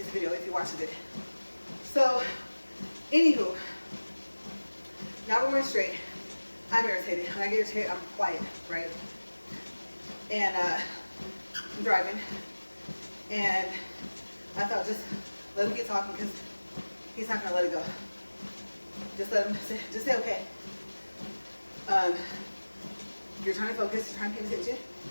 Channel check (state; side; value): inverted; both; correlation -1.00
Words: the video if he watches it. So, anywho, now we're going straight. I'm irritated. When I get irritated, I'm quiet, right? And I'm driving, and I thought just let him keep talking because he's not going to let it go. Just let him just say okay. You're trying to focus, you're trying to pay attention.